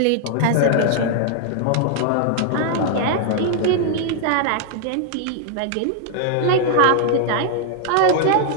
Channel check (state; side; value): different; both; correlation 0.00